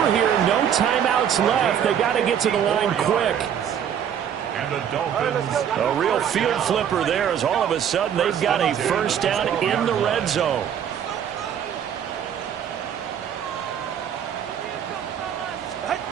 here, no timeouts left. They got to get to the line quick. And the Dolphins. A real field flipper there as all of a sudden they've got a first down in the red zone.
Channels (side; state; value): left; quieter; 8.8 dB